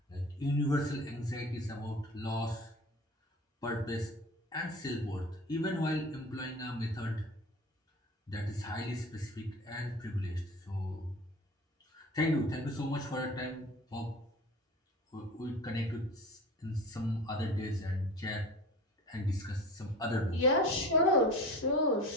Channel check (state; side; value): normal; both; correlation 0.37